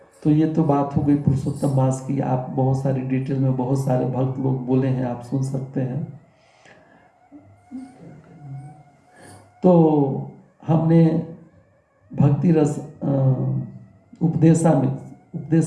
तो ये तो बात हो गई पुरुषोत्तम मास की। आप बहुत सारी डिटेल में बहुत सारे भक्त लोग बोले हैं, आप सुन सकते हैं। तो हमने भक्ति रस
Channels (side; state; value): both; identical; correlation 1.00